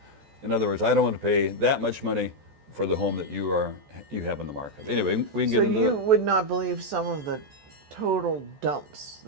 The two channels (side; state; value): left; late; 14 ms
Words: In other words, I don't want to pay that much money for the home that you have in the market. Anyway, we can get into So you would not believe some of the total dumps